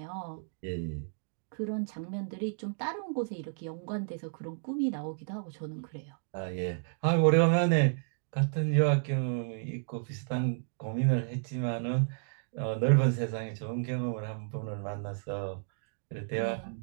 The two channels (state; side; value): silent; left; digital silence